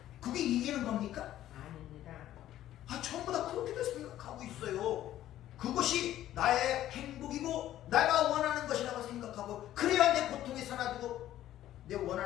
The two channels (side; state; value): right; quieter; 13.0 dB